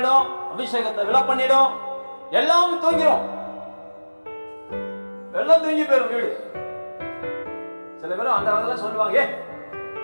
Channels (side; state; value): both; inverted; correlation -1.00